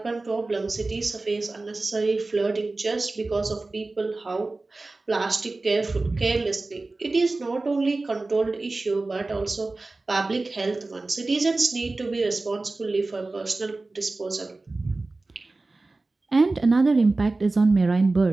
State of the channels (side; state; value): left; quieter; 3.3 dB